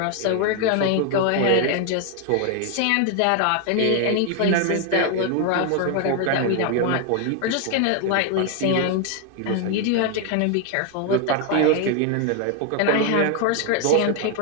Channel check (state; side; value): different; both; correlation 0.01